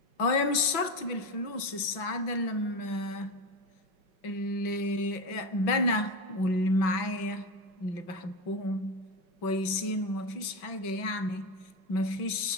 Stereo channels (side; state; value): right; late; 5.9 ms